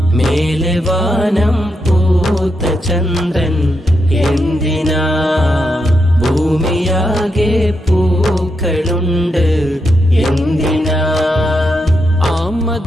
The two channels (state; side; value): normal; both; correlation 0.83